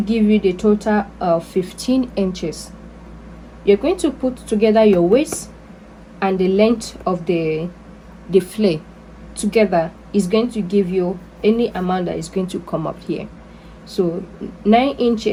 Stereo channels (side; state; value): both; identical; correlation 1.00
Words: you the total of 15 inches. You're going to put together your waist and the length of the flare together is going to give you any amount that is going to come up here. So 9